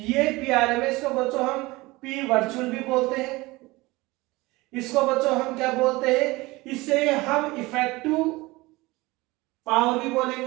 P RMS को बच्चों हम P वर्चुअल भी बोलते हैं, इसको बच्चों हम क्या बोलते हैं, इसे हम इफेक्टिव पावर भी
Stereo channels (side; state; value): left; quieter; 21.5 dB